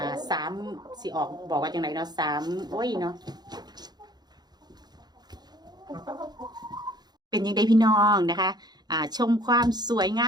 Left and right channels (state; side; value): late; left; 0.20 ms